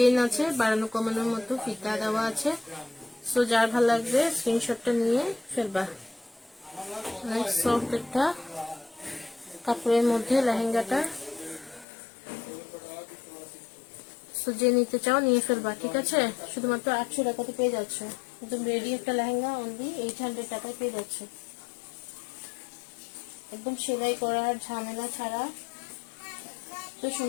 আছে, বাড়ানো কমানোর মতো ফিতা দেওয়া আছে। সো যার ভালো লাগবে স্ক্রিনশটটা নিয়ে ফেলবা। অনেক সফট একটা কাপড়ের মধ্যে লেহেঙ্গাটা। সো যে নিতে চাও নিয়ে ফেলবা, ঠিক আছে? শুধুমাত্র 800 টাকাতে পেয়ে যাচ্ছ একদম রেডি একটা লেহেঙ্গা, অনলি 800 টাকায় পেয়ে যাচ্ছ, একদম সেলাই করার ঝামেলা ছাড়া। তো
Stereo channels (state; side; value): drops out; right; at 11.9 s